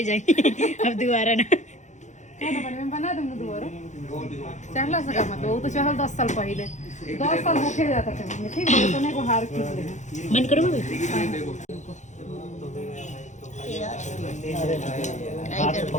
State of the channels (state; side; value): late; right; 0.35 ms